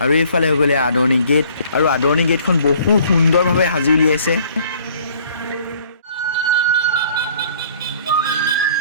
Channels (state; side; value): inverted; both; correlation -0.57